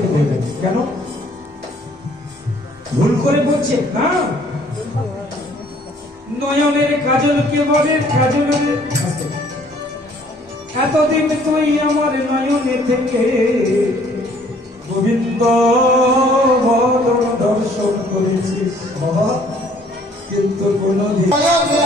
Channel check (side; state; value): both; normal; correlation 0.59